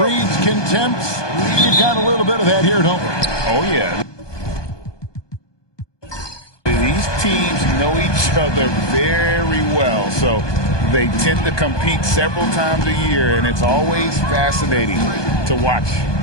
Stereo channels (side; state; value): right; late; 1.2 ms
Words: contempt. We've got a little bit of that here, don't we? Oh, yeah. These teams know each other very well, so they tend to compete several times a year, and it's always fascinating to watch.